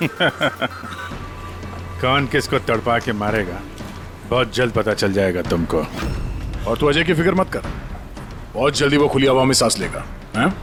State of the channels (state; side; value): identical; both; correlation 1.00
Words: कौन किसको तड़पा के मारेगा बहुत जल्द पता चल जाएगा तुमको। और तू अजय की फिक्र मत कर, बहुत जल्दी वो खुली हवा में सांस लेगा। हैं?